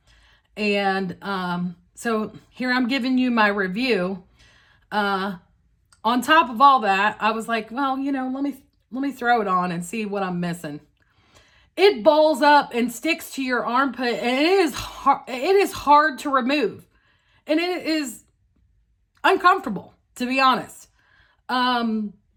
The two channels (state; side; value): identical; both; correlation 1.00